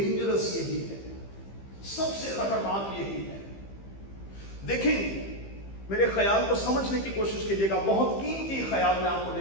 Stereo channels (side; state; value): right; late; 15 ms